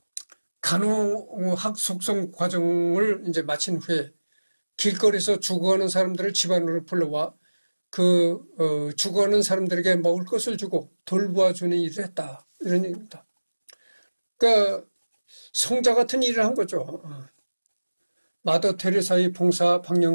간호학 속성 과정을 이제 마친 후에 길거리에서 죽어가는 사람들을 집안으로 불러와 죽어가는 사람들에게 먹을 것을 주고 돌보아주는 일을 했다. 이런 얘기입니다. 그러니까 성자 같은 일을 한 거죠. 마더 테레사의 봉사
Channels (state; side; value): inverted; both; correlation -1.00